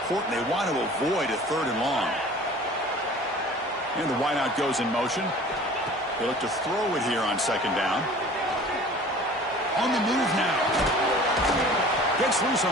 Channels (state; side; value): normal; both; correlation 0.45